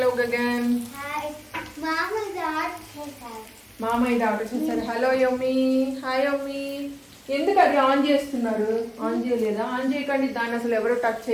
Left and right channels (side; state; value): both; identical; correlation 1.00